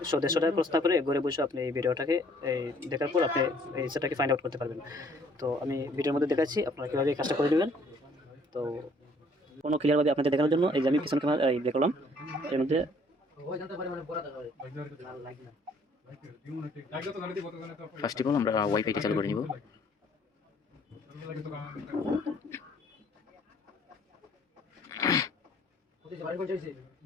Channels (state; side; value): normal; both; correlation 0.60